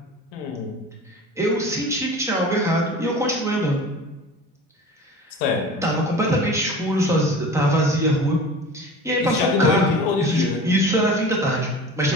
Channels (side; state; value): both; normal; correlation 0.38